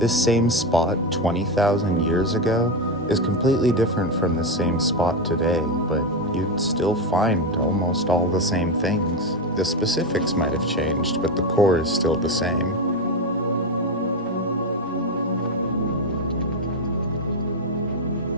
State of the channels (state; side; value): normal; both; correlation 0.12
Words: same spot 20,000 years ago is completely different from the same spot today, but you'd still find almost all the same things. The specifics might have changed, but the core is still the same.